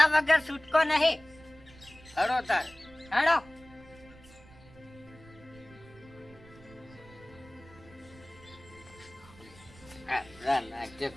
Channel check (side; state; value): right; noise; rumble, 22 dB below the sound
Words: વગર છૂટકો નહીં હડો તાર હેડો નાટક